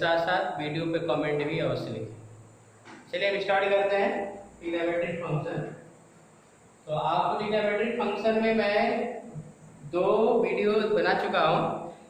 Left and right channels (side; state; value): both; identical; correlation 1.00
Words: साथ वीडियो पे कमेंट भी अवश्य लिखें। चलिए हम स्टार्ट करते हैं ट्रिग्नोमेट्रिक फंक्शन। तो आपको ट्रिग्नोमेट्रिक फंक्शन में मैं 2 वीडियो बना चुका हूं,